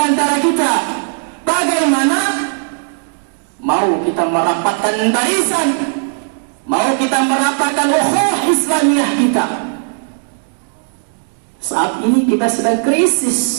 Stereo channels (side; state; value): left; silent; digital silence